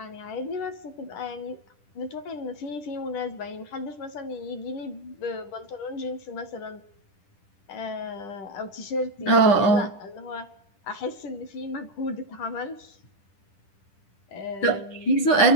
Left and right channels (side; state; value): right; late; 10 ms